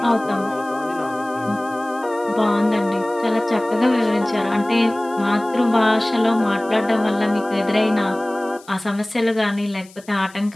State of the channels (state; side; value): noise; left; hiss, 24 dB below the sound